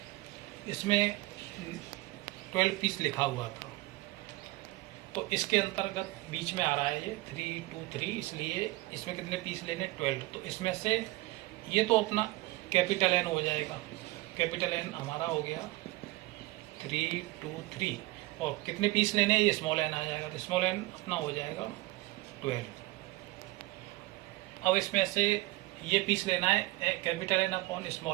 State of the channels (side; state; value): left; quieter; 20.0 dB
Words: इसमें 12 पीस लिखा हुआ था, तो इसके अंतर्गत बीच में आ रहा है ये 323, इसलिए इसमें कितने पीस लेने 12। तो इसमें से ये तो अपना कैपिटल N हो जाएगा, कैपिटल N हमारा हो गया 323 और कितने पीस लेने ये स्मॉल n आ जाएगा, तो स्मॉल n अपना हो जाएगा 12। अब इसमें से ये पीस लेना है capital N upon